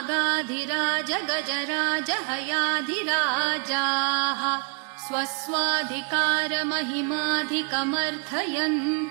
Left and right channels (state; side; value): quieter; left; 36.7 dB